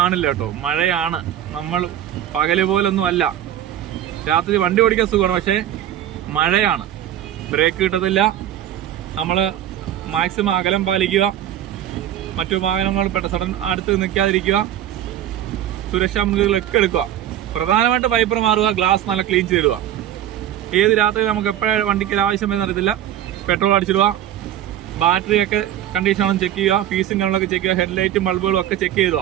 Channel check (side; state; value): left; quieter; 11.6 dB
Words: കേട്ടോ. മഴയാണ്. നമ്മൾ പകല് പോലൊന്നും അല്ല. രാത്രി വണ്ടി ഓടിക്കാൻ സുഖമാണ്, പക്ഷെ മഴയാണ്, ബ്രേക്ക് കിട്ടത്തില്ല. നമ്മൾ മാക്സിമം അകലം പാലിക്കുക, മറ്റു വാഹനങ്ങൾ സഡൻ അടുത്ത് നിൽക്കാതിരിക്കുക, സുരക്ഷാ മുൻകരുതലൊക്കെ എടുക്കുക. പ്രധാനമായിട്ട് വൈപ്പർ മാറുക, ഗ്ലാസ് നല്ല ക്ലീൻ ചെയ്തിടുക. ഏത് രാത്രി നമുക്ക് എപ്പോഴും വണ്ടിക്ക് ആവശ്യം വരുന്ന അറിയത്തില്ല, പെട്രോൾ അടിച്ചിടുക. ബാറ്ററിയൊക്കെ കണ്ടീഷനാണെന്ന് ചെക്ക് ചെയ്യുക, ഫീസും കാര്യങ്ങളൊക്കെ ചെക്ക് ചെയ്യുക, ഹെഡ്ലൈറ്റും ബൾബുകളും ഒക്കെ ചെക്ക്